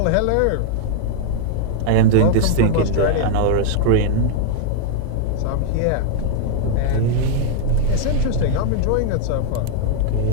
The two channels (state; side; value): different; both; correlation 0.00